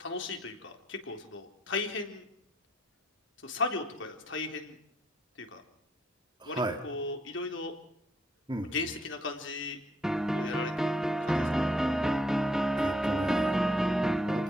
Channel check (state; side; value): normal; both; correlation 0.71